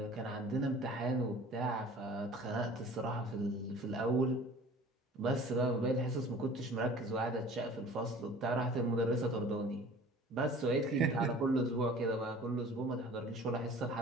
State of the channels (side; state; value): both; normal; correlation 0.46